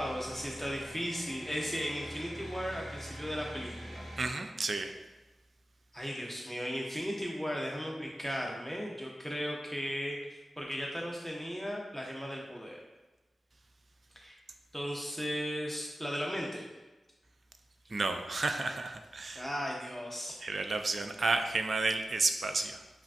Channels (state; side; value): normal; both; correlation 0.93